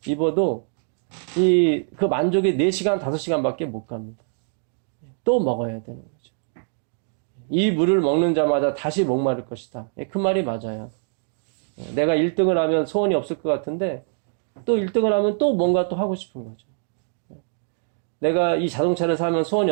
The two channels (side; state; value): left; silent; digital silence